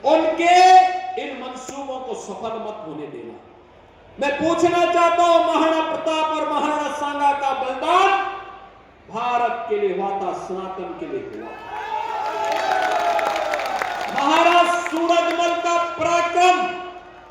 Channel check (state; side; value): identical; both; correlation 1.00